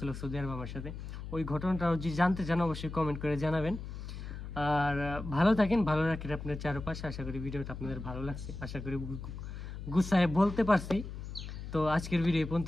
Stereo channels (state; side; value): noise; left; hum, 9 dB below the sound